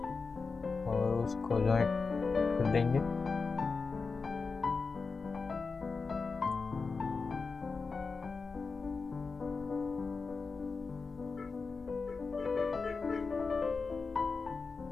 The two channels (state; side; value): quieter; right; 4.5 dB